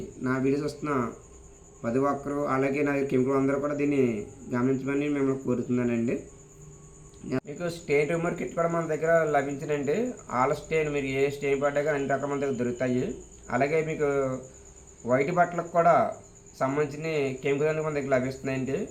నా వీడియోస్ వస్తున్న ప్రతి ఒక్కరు, అలాగే నా కెమికల్ అందరూ కూడా దీన్ని గమనించమని మిమ్మల్ని కోరుతున్నానండి. మీకు స్టెయిన్ రిమూవర్ కిట్ కూడా మన దగ్గర లభించినండి. ఆల్ స్టెయిన్ మీరు ఏ స్టెయిన్ పడ్డా కానీ అన్ని రకాల మన దగ్గర దొరుకుతాయి. అలాగే మీకు వైట్ బట్టలకు కూడా సంబంధించిన కెమికల్ అన్నీ మన దగ్గర లభిస్తున్నాయండి.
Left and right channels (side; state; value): both; identical; correlation 1.00